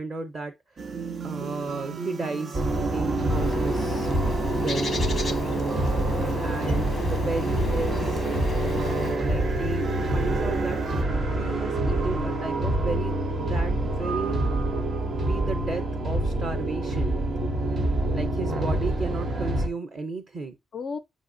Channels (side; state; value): both; normal; correlation 0.76